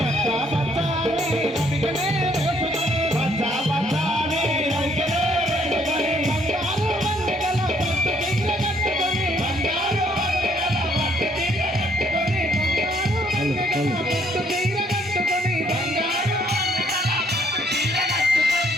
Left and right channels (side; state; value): both; normal; correlation 0.66